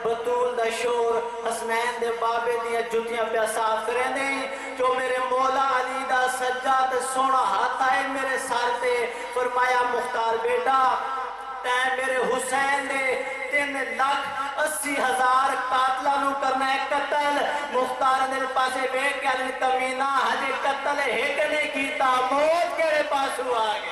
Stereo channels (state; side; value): identical; both; correlation 1.00